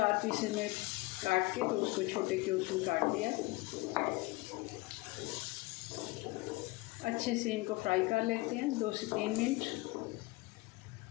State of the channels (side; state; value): right; quieter; 22.5 dB